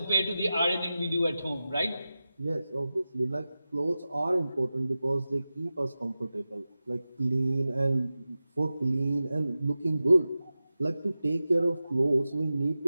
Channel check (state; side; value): inverted; both; correlation -0.94